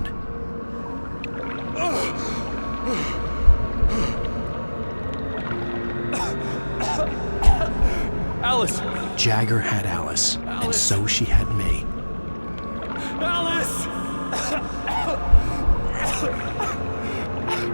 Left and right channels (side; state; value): both; inverted; correlation -1.00